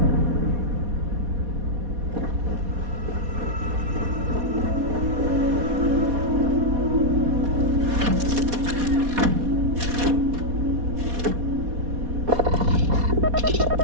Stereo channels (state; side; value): late; left; 4.2 ms